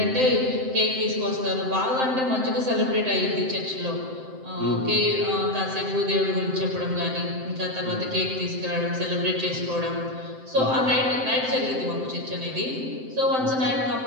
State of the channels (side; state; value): left; late; 7.7 ms